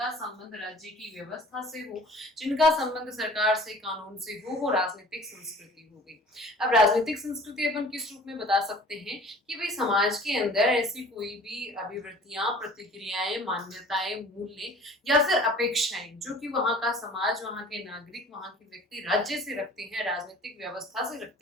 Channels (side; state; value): both; normal; correlation 0.48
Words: संबंध राज्य की व्यवस्था से हो, जिनका संबंध सरकार से, कानून से हो, वो राजनीतिक संस्कृति हो गई। अब राजनीतिक संस्कृति अपन किस रूप में बता सकते हैं कि भाई समाज के अंदर ऐसी कोई भी अभिवृत्तियां, प्रतिक्रियाएं, मान्यताएं, मूल्य या फिर अपेक्षाएं जो कि वहां का समाज, वहां के नागरिक, वहां के व्यक्ति राज्य से रखते हैं, राजनीतिक व्यवस्था से